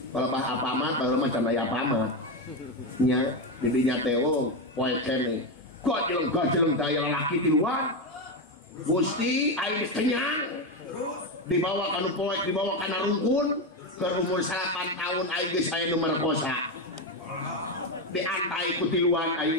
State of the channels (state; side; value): normal; both; correlation 0.11